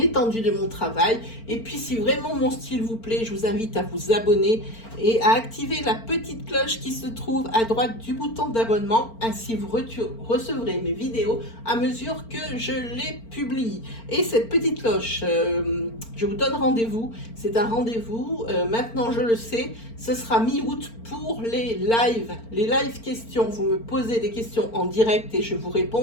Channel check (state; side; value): late; right; 4.4 ms